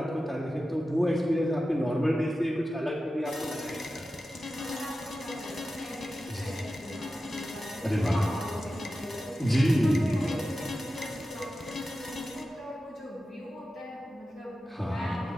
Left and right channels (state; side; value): normal; both; correlation 0.93